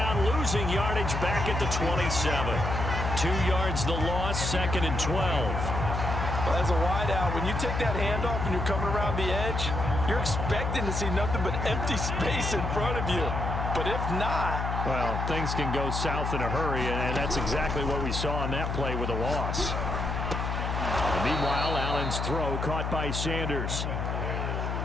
losing yardage back at the 27. 2 yards the loss, 2nd and 12. Well, as a wideout, when you take that handoff and you're coming around the edge, you're expecting to see nothing but empty space in front of you. But if not... Well, things can go south in a hurry, and that's exactly what we saw on that play with a loss. And meanwhile, Allen's throw caught by Sanders.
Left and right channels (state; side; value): noise; left; hum, 2 dB below the sound